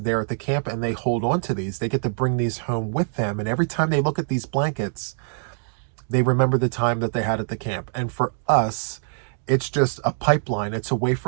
at the camp, and they hold on to these. They get to bring these home with them, and every time they look at these blankets, they remember the time that they had at the camp. And for us, it's just a pipeline. It's a way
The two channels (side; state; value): left; silent; digital silence